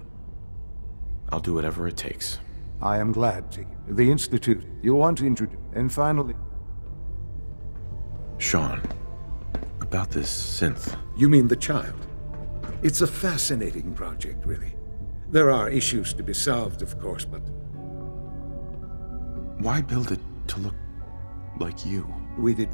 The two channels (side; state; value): both; inverted; correlation -1.00